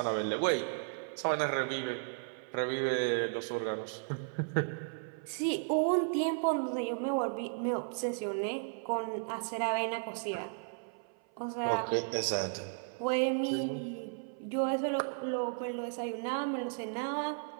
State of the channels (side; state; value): left; silent; 55 dB below the other